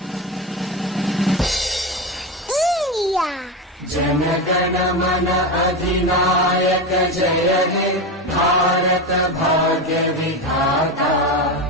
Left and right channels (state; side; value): normal; both; correlation 0.18